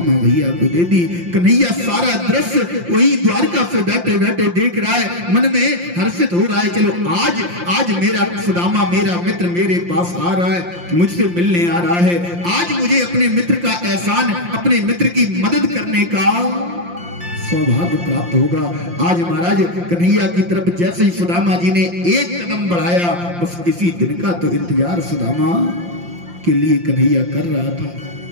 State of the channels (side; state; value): left; late; 5.7 ms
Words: भैया को दे दी। कन्हैया सारा दृश्य वही द्वारका से बैठे बैठे देख रहा है, मन में हर्षित हो रहा है। चलो आज मेरा सुदामा, मेरा मित्र मेरे पास आ रहा है, मुझसे मिलने आ रहा है, आज मुझे अपने मित्र का एहसान, अपने मित्र की मदद करने का सौभाग्य प्राप्त होगा। आज महाराज कन्हैया की तरफ जैसे ही सुदामा जी ने एक कदम बढ़ाया, बस इसी दिन का तो इंतजार सुदामा के लिए कन्हैया कर रहा था।